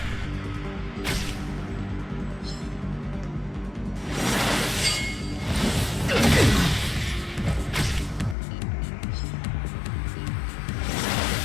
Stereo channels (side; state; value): right; drops out; at 8.3 s